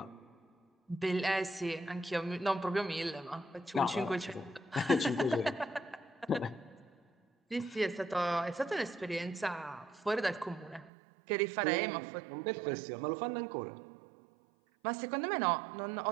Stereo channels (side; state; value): left; drops out; at 10.9 s